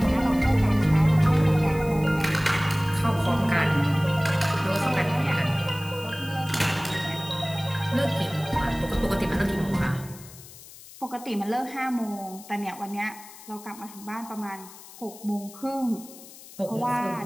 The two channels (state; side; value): noise; left; hiss, 18 dB below the sound